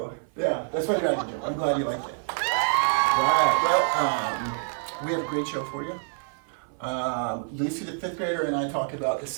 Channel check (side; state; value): left; silent; 56 dB below the other